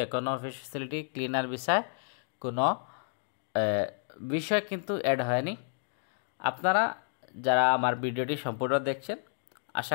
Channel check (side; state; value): right; silent; digital silence